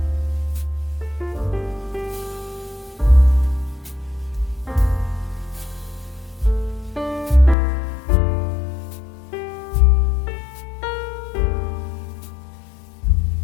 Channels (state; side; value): drops out; right; at 7.6 s